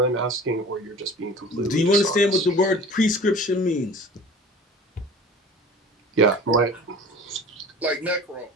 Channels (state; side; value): normal; both; correlation 0.42